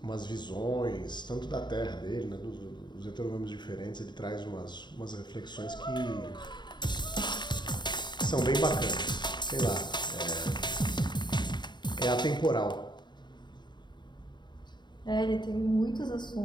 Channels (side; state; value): right; late; 0.22 ms